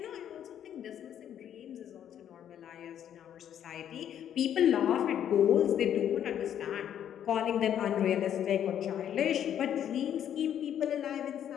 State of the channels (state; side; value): quieter; right; 9.9 dB